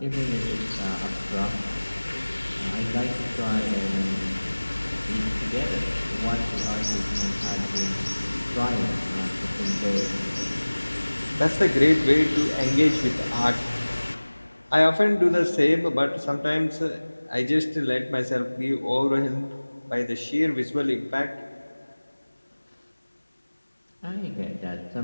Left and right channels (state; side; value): inverted; both; correlation -1.00